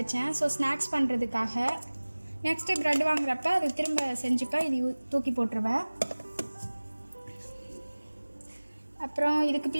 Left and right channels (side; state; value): both; inverted; correlation -1.00